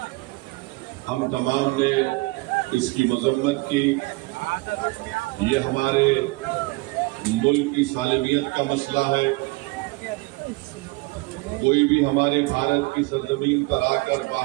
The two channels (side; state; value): left; quieter; 24.9 dB